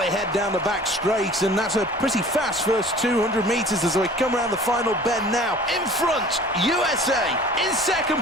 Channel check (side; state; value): both; normal; correlation 0.46